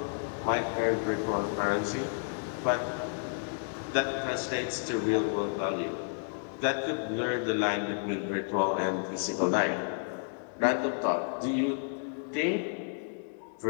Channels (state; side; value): silent; right; digital silence